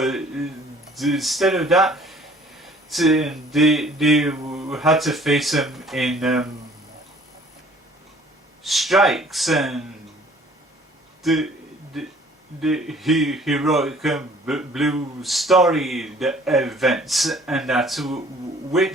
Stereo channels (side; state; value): both; normal; correlation 0.54